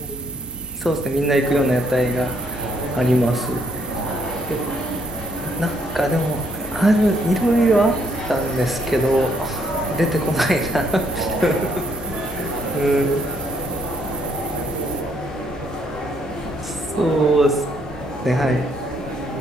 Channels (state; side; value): normal; both; correlation 0.70